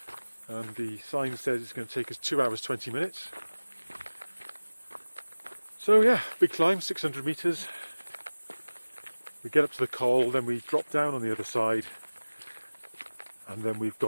and the sign says it's going to take us 2 hours 20 minutes. So yeah, big climb, 600 metres. We get up to the col, then we drop down on the other side, and then we've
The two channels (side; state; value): both; inverted; correlation -1.00